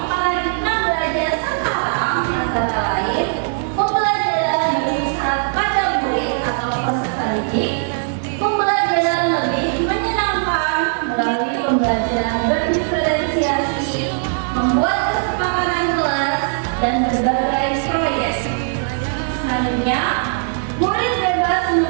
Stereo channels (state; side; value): silent; left; digital silence